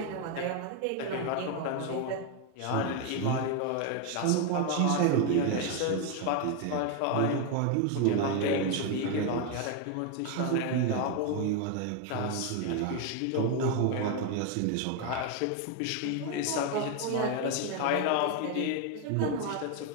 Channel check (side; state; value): both; different; correlation 0.01